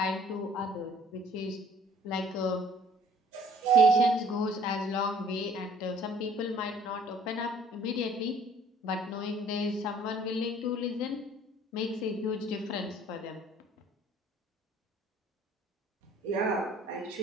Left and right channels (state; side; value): normal; both; correlation 0.56